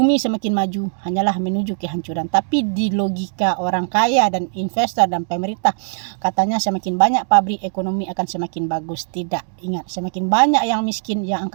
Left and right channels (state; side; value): silent; left; digital silence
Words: semakin maju hanyalah menuju kehancuran. Tapi di logika orang kaya dan investor dan pemerintah, katanya semakin banyak pabrik, ekonomi akan semakin bagus. Tidak, ingat, semakin banyak yang miskin, yang